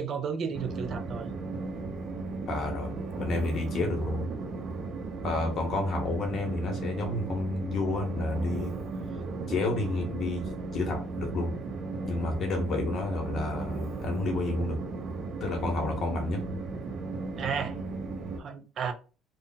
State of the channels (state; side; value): normal; both; correlation 0.68